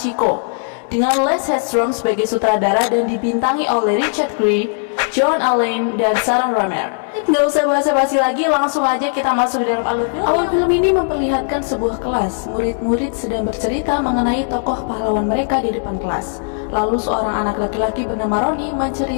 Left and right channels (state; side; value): silent; right; 65 dB below the other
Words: dengan Les Hedstrom sebagai sutradara dan dibintangi oleh Richard Gere, Joan Allen, dan Sarah Romer. Nggak usah basa-basi lagi, langsung aja kita masuk ke dalam alur film. Awal film ini memperlihatkan sebuah kelas. Murid-murid sedang bercerita mengenai tokoh pahlawan mereka di depan kelas. Lalu seorang anak laki-laki bernama Roni